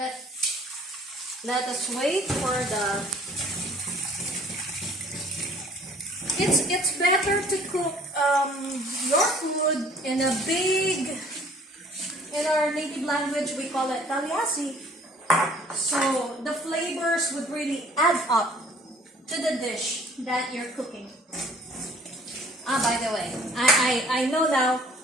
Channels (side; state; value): both; normal; correlation 0.55